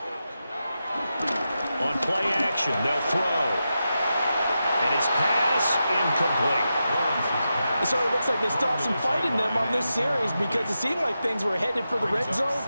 On play action, they'll throw. And his pass incomplete. So it looks like they still have some fight in them on this series because it seemed like things were headed for the red zone.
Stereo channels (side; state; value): both; inverted; correlation -0.89